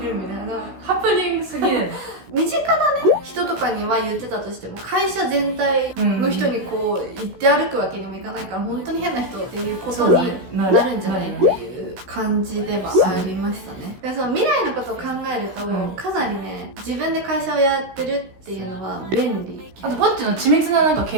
るみたいな。ハプニングすぎる。身近なね、人とかには言ってたとしても、会社全体の人にこう言って歩くわけにもいかないから、本当に変な人っていうことになるんじゃないっていう感じではありましたね。だからその未来のことを考えると、かなりね、自分で会社をやってるっていうのは便利。あとポッチの緻密ななんか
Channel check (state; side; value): late; left; 16 ms